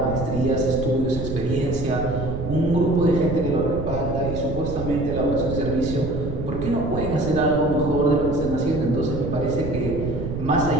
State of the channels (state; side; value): noise; right; rumble, 5 dB below the sound